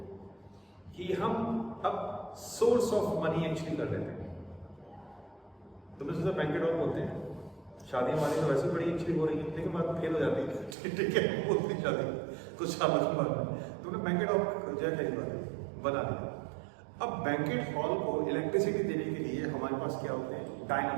कि हम अब सोर्स ऑफ मनी एक्चुअली कर लेते हैं। तुमने सोचा बैंकेट हॉल बोलते हैं, शादी हमारी तो वैसे बड़ी एक्चुअली हो रही है, लेकिन बात फेल हो जाती है, ठीक है, बोलती शादी कुछ सालों के बाद तुमने बैंकेट हॉल जो है बना दिया। अब बैंकेट हॉल को इलेक्ट्रिसिटी देने के लिए हमारे पास क्या होते हैं,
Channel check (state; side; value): drops out; left; at 10.8 s